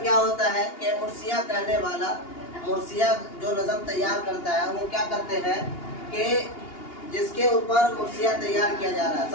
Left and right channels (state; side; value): late; right; 2.8 ms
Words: क्या होता है कि मुर्सिया कहने वाला, मुर्सिया जो नज़म तैयार करता है वो क्या करते हैं कि जिसके ऊपर मुर्सिया तैयार किया जा रहा है,